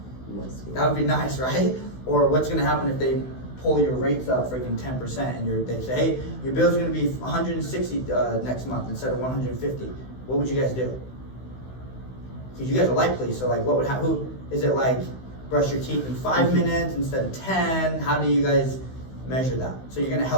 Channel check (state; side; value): late; right; 16 ms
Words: That would be nice, right? Or what's gonna happen if they pull your rates up freaking 10% and they say, hey, your bill's gonna be 160 next month instead of 150. What would you guys do? Because you guys are light police, so like what would happen? Who is it like brush your teeth in 5 minutes instead of 10? How do you guys measure that? So you're gonna